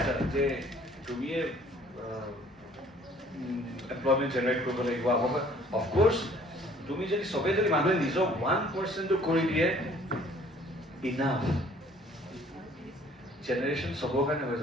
যে তুমিয়ে এমপ্লয়মেণ্ট জেনেৰেট কৰিব লাগিব অফক'ৰ্ছ তুমি যদি চবেই যদি মানুহে নিজৰ 1% কৰি দিয়ে ইনাফ জেনেৰেশ্যন চবৰ কাৰণে হৈ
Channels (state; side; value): normal; both; correlation 0.56